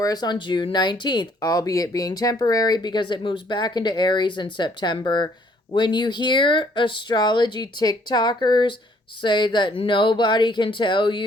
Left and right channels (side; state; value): both; normal; correlation 0.63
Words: on June 19th, albeit being temporary because it moves back into Aries in September. When you hear astrology TikTokers say that nobody can tell